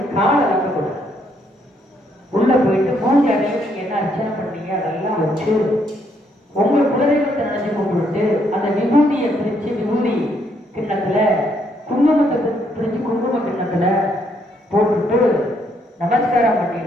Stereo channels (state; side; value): normal; both; correlation 0.72